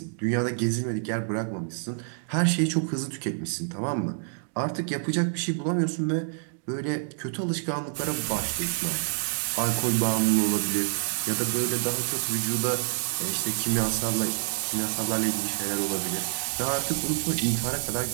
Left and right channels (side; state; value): left; silent; digital silence